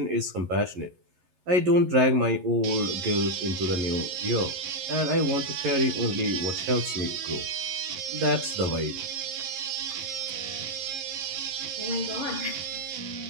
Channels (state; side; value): late; left; 11 ms